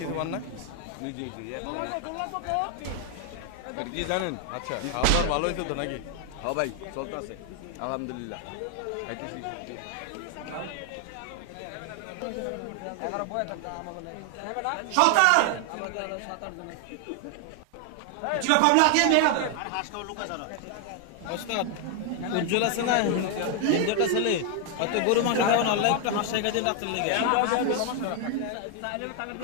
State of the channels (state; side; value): different; both; correlation 0.00